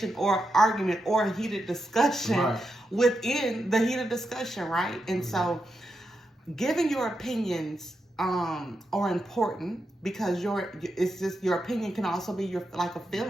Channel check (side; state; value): both; normal; correlation 0.86